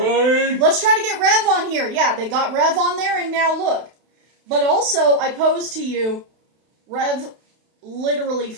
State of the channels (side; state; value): left; late; 32 ms